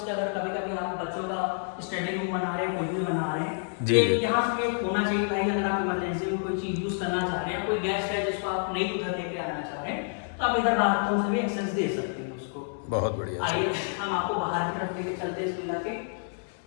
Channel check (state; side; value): silent; right; 59 dB below the other